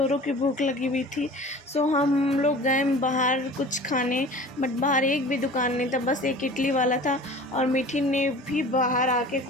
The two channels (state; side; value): normal; both; correlation 0.41